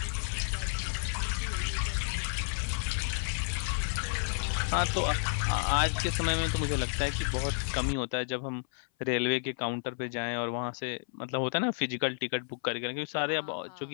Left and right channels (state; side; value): silent; right; 57 dB below the other